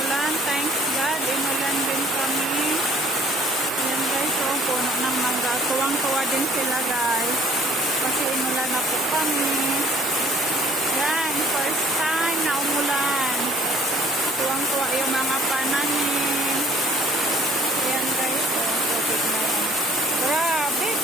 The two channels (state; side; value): normal; both; correlation 0.55